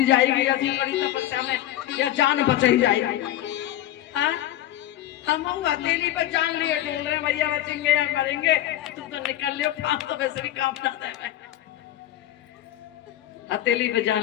जाएगी ऐसी बड़ी तपस्या में, या जान बच ही जाएगी। हाँ? हम हथेली पे जान लिए डोल रहे भैया बचेंगे या मरेंगे, तुम तो निकल लियो, काम तो वैसे भी काम ना है। हथेली पे जान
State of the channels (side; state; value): right; quieter; 13.4 dB